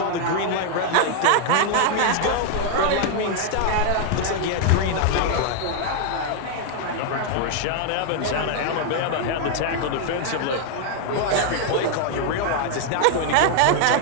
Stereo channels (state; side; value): different; both; correlation 0.00